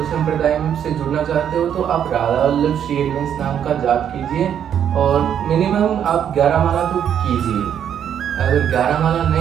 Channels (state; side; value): quieter; left; 9.1 dB